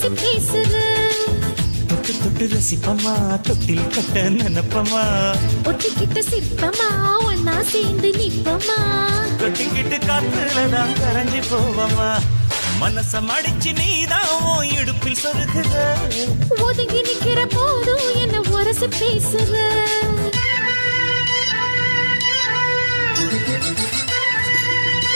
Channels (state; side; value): inverted; both; correlation -1.00